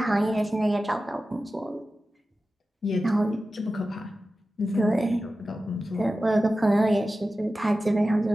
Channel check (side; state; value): both; normal; correlation 0.94